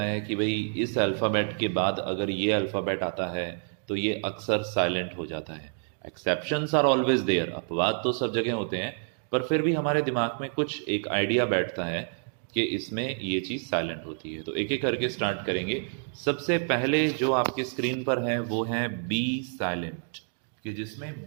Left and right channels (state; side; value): silent; left; 59 dB below the other